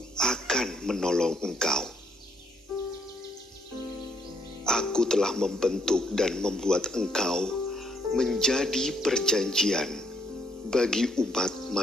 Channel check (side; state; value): both; normal; correlation 0.71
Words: akan menolong engkau. Aku telah membentuk dan membuat engkau menjadi perjanjian bagi umat